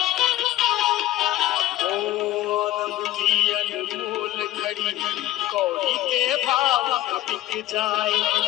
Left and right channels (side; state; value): right; quieter; 15.2 dB